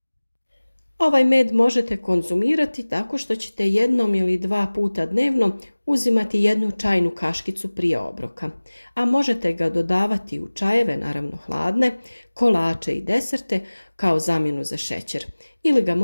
Ovaj med možete konzumirati tako što ćete 1 ili 2 puta dnevno uzimati 1 čajnu kaškicu prije obroka, a možete ga dodavati u čajeve, naravno hladne, kolače i deserte kao zamjenu za šećer ili ga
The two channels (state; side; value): inverted; both; correlation -1.00